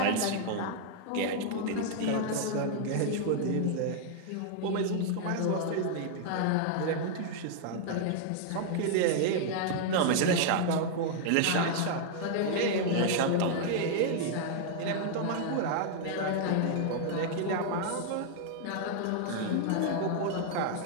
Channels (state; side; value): different; both; correlation -0.01